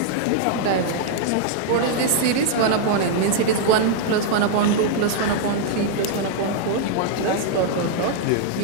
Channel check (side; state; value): both; different; correlation -0.01